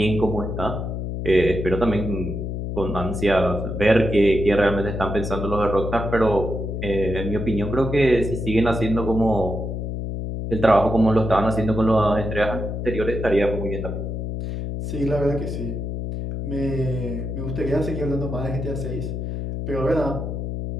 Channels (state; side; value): noise; left; hum, 4 dB below the sound